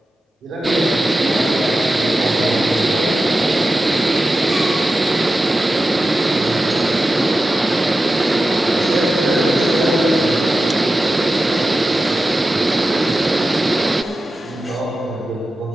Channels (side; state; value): both; normal; correlation 0.92